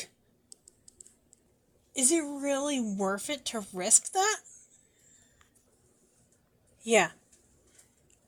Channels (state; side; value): identical; both; correlation 1.00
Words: Is it really worth it to risk that? Yeah,